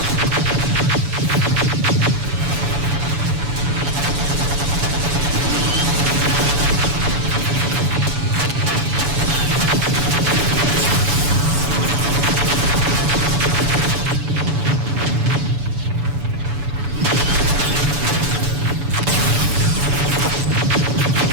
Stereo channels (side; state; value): left; late; 7.0 ms